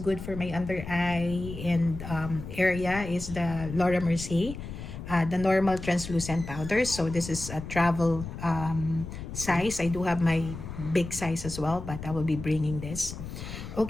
for my under eye and area, is the Laura Mercier. The normal translucent powder. So this is a travel size. I do have my big size as well, but I will be bringing this.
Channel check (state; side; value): noise; left; rumble, 9 dB below the sound